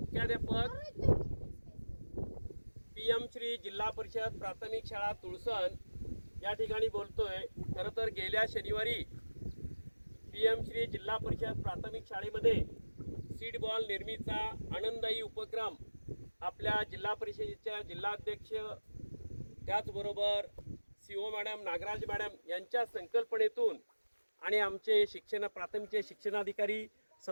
PM श्री जिल्हा परिषद प्राथमिक शाळा तुळसण या ठिकाणी बोलतोय. खरं तर गेल्या शनिवारी PM श्री जिल्हा परिषद प्राथमिक शाळेमध्ये सीड बॉल निर्मितीचा आनंददायी उपक्रम आपल्या जिल्हा परिषदेच्या जिल्हाध्यक्ष त्याचबरोबर CO मॅडम नागराज मॅडम यांच्या संकल्पनेतून आणि आमचे प्राथमिकचे शिक्षणाधिकारी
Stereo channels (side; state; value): both; inverted; correlation -1.00